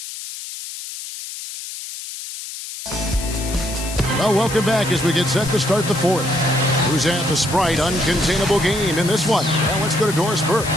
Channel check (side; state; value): left; noise; hiss, 10 dB below the sound